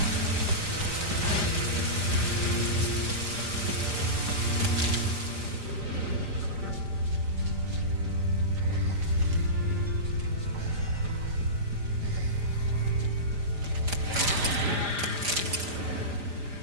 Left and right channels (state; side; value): late; left; 5.0 ms